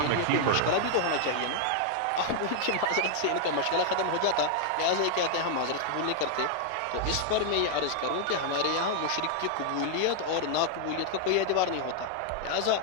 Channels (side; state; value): both; different; correlation 0.00